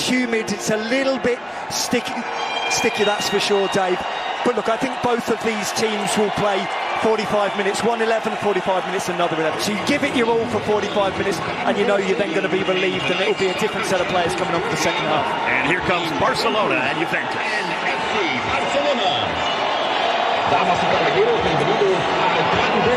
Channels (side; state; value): both; identical; correlation 1.00